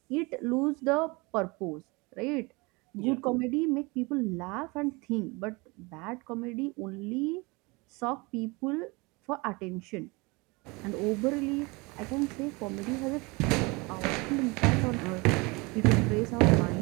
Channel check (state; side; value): quieter; left; 26.2 dB